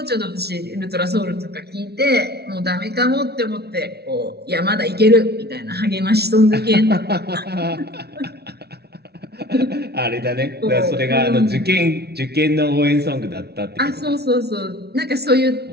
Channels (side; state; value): left; late; 0.47 ms